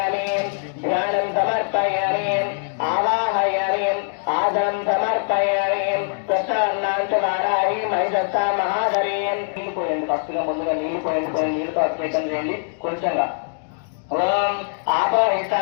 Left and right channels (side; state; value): right; silent; digital silence